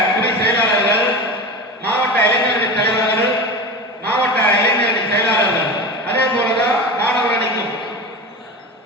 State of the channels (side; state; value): both; normal; correlation 0.28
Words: துணை செயலாளர்கள், மாவட்ட இளைஞரணி தலைவர்கள், மாவட்ட இளைஞரணி செயலாளர்கள், அதே போலதான் மாணவர் அணிக்கும்